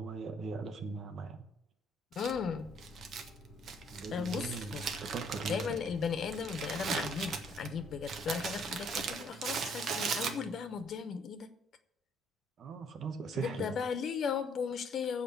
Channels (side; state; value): both; normal; correlation 0.65